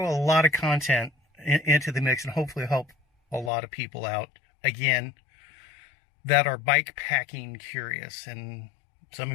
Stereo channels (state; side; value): drops out; right; at 3.5 s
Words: a lot of content into the mix and hopefully help a lot of people out, again, that are bike packing curious. And some